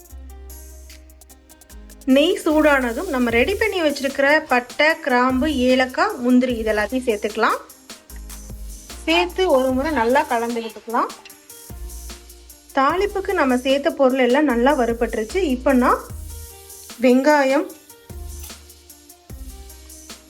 நெய் சூடானதும் நம்ம ரெடி பண்ணி வச்சிருக்கிற பட்டை, கிராம்பு, ஏலக்காய், முந்திரி இதெல்லாத்தையும் சேர்த்துக்கலாம். சேர்த்து ஒரு முறை நல்லா கலந்து விட்டுக்கலாம். தாளிப்புக்கு நம்ம சேர்த்த பொருள் எல்லாம் நல்லா வறுபட்டுருச்சு. இப்போ நான் வெங்காயம்,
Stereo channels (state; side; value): identical; both; correlation 1.00